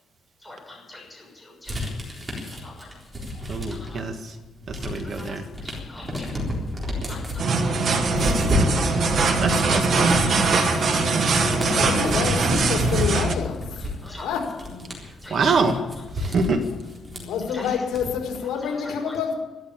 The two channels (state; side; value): normal; both; correlation 0.71